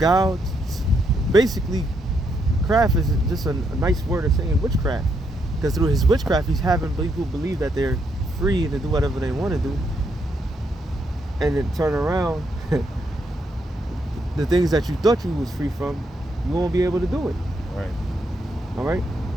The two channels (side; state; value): both; normal; correlation 0.77